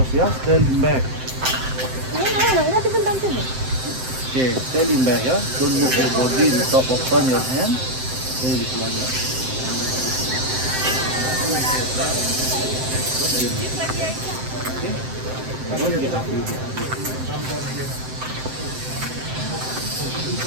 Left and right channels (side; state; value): left; late; 7.7 ms